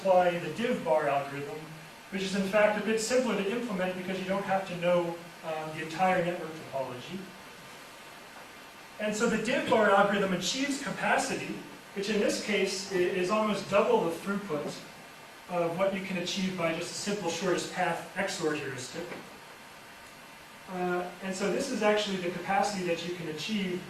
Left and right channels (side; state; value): both; identical; correlation 1.00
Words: the div bar algorithm, which is in fact a bit simpler to implement because you don't have to know the entire network topology. And so the div bar algorithm achieves capacity, which in this case is almost double the throughput of what you can achieve by just a simple shortest path XOR heuristic. And so this is actually the capacity that you can achieve